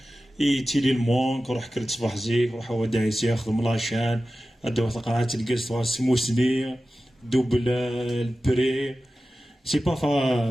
تيلي المونك روح كرت صباح زيك روح هو دايس ياخذ ملاشان ادو قرعات الكاس سموسني دوبل البري سي با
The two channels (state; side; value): normal; both; correlation 0.94